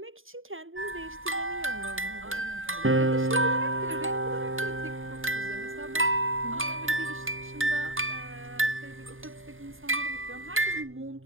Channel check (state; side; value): late; left; 0.59 ms